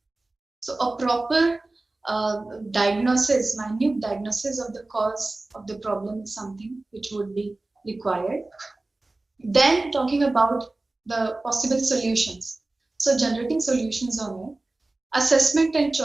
So a proper diagnosis, minute diagnosis of the cause of the problem is something which would be required. Then talking about the possible solutions. So generating solutions on it, assessment and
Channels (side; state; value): left; quieter; 3.0 dB